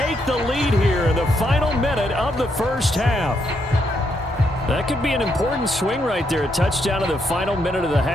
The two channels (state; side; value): normal; both; correlation 0.78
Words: the lead here in the final minute of the 1st half. That could be an important swing right there. A touchdown in the final minute of the